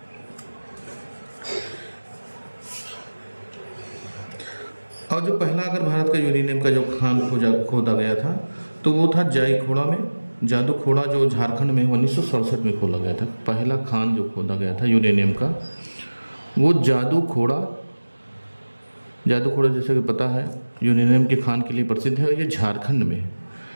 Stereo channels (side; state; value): both; inverted; correlation -1.00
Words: और जो पहला अगर भारत का यूरेनियम का जो खान खोदा गया था तो वो था जाईखोड़ा में, जादूखोड़ा, जो झारखंड में 1967 में खोला गया था। पहला खान जो खोदा गया था यूरेनियम का वो जादूखोड़ा जैसे कि पता है यूरेनियम के खान के लिए प्रसिद्ध है। और ये झारखंड में